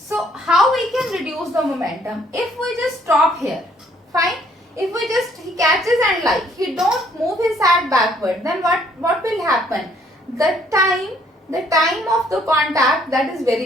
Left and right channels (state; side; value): normal; both; correlation 0.64